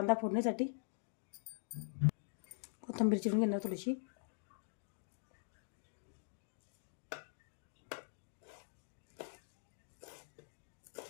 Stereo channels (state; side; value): silent; right; digital silence